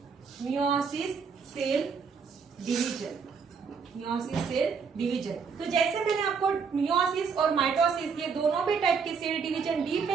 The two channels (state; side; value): quieter; left; 5.7 dB